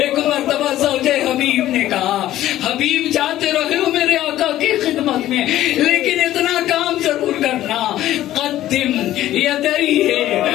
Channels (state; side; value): quieter; right; 13.8 dB